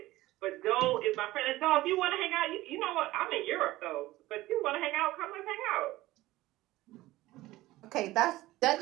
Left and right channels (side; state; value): left; quieter; 17.5 dB